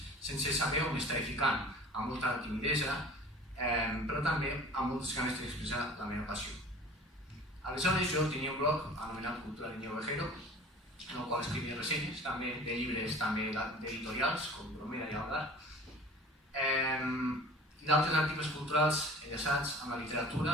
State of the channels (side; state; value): both; normal; correlation 0.44